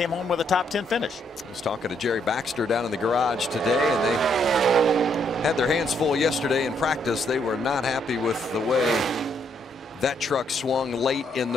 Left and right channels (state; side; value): normal; both; correlation 0.73